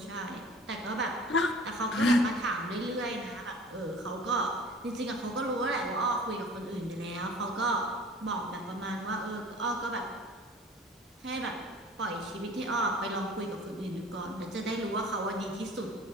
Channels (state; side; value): normal; both; correlation 0.45